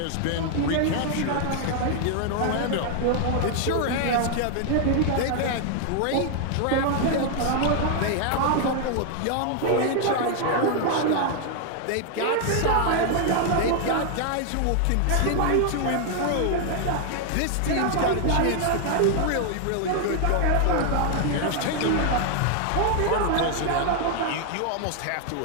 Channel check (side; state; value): both; different; correlation 0.00